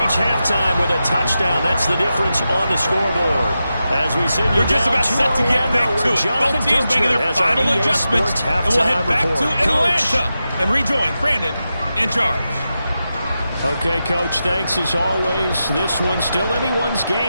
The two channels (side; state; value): both; inverted; correlation -0.90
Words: halftime with a touchdown. That's the difference on the scoreboard. As we send you We're just about set to get back to it. Both teams making their final adjustments, and we'll head back to Atlanta and rejoin Brandon in charge. Okay, Coach, thanks as always. This one's still anyone's